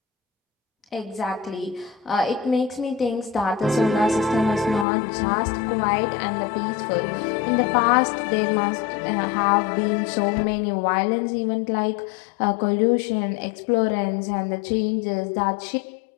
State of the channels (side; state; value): right; drops out; at 4.9 s